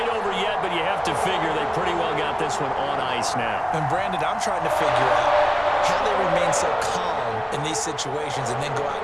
over yet, but you have to figure they pretty well got this one on ice now. And Brandon, I'm trying to figure out how they remain so calm in these situations and then go out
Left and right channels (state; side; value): identical; both; correlation 1.00